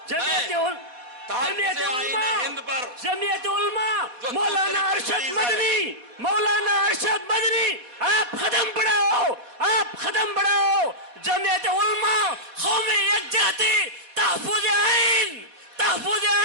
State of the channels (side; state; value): left; late; 4.1 ms